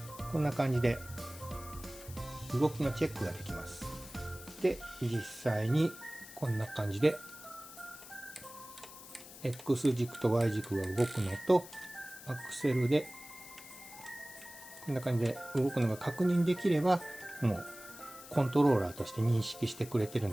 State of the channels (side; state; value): left; noise; hiss, 16 dB below the sound